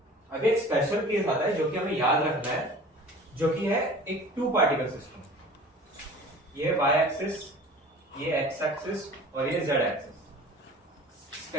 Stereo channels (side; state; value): both; normal; correlation 0.43